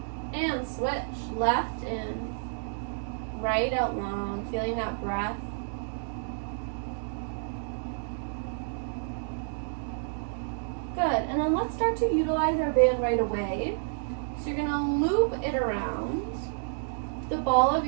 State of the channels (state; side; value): silent; left; digital silence